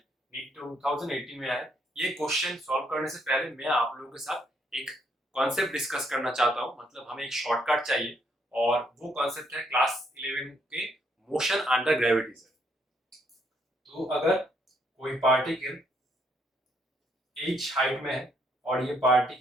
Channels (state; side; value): normal; both; correlation 0.72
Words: नीट 2018 में आया है। ये क्वेश्चन सॉल्व करने से पहले मैं आप लोगों के साथ एक कॉन्सेप्ट डिस्कस करना चाहता हूं, मतलब हमें एक शॉर्टकट चाहिए और वो कॉन्सेप्ट है क्लास 11 के मोशन अंडर ग्रेविटी से। तो अगर कोई पार्टिकल h हाइट में है और ये